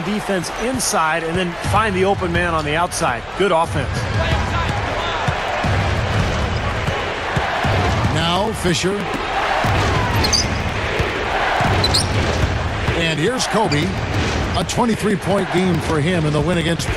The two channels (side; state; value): both; identical; correlation 1.00